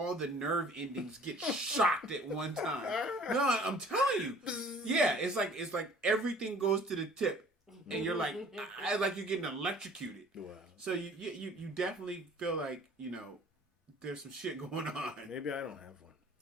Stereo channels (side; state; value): both; normal; correlation 0.52